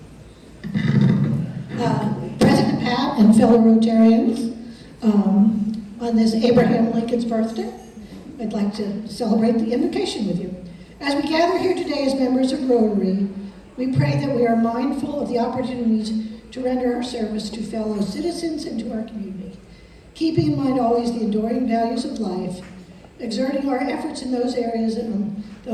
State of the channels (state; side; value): identical; both; correlation 1.00